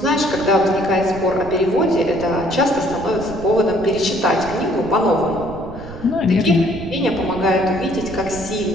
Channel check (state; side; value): noise; right; rumble, 14 dB below the sound